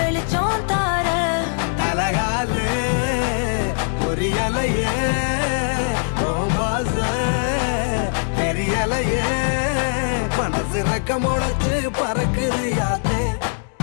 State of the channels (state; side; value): silent; right; digital silence